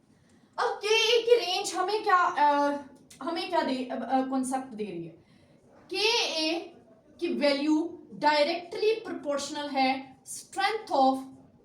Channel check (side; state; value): both; identical; correlation 1.00